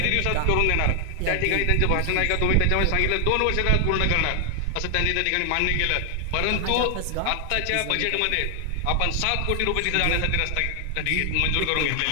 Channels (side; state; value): both; different; correlation 0.00